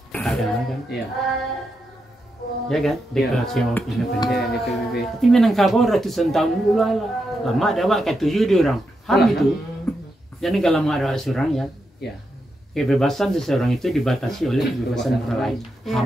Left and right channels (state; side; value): normal; both; correlation 0.85